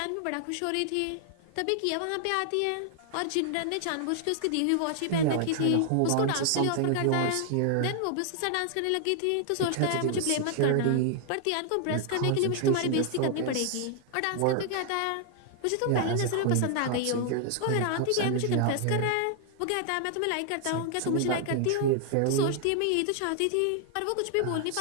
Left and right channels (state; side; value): different; both; correlation 0.00